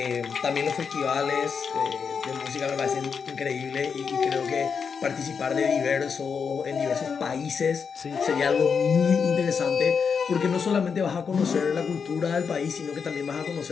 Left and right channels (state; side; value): quieter; right; 6.1 dB